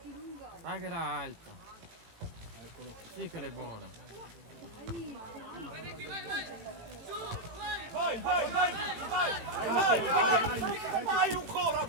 Dai che era alta. Sì che era buona. Vai ancora,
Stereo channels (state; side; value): late; left; 18 ms